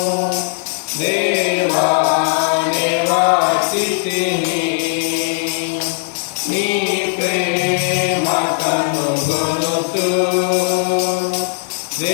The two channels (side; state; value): right; silent; 57 dB below the other